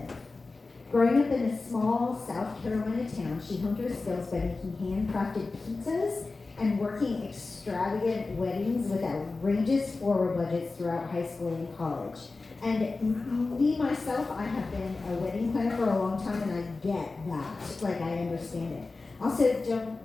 Growing up in a small South Carolina town, she honed her skills by making handcrafted pizzas and working extravagant weddings with outrageous floral budgets throughout high school and college. And me, myself, I have been a wedding planner for a long time, and I get that. Like, I understand it. Also,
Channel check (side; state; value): right; quieter; 3.7 dB